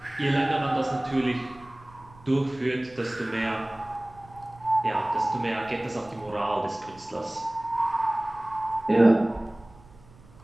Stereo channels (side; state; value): right; noise; rumble, 24 dB below the sound